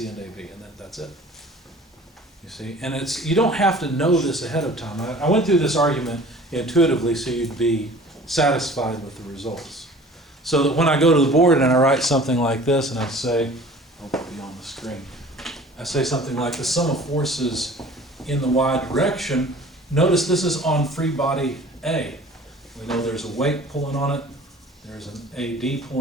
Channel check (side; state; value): both; normal; correlation 0.46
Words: and AB, and that's it. You see, and you don't have to know this ahead of time. I went through this argument intuitively so you'd be satisfied with the results. So that when I go to the board and I write something like this and I say, I'll be on the screen, I say something like the sum of forces in the y direction, notice this is on free body A. We know there's a weight pulling on it, there's an AD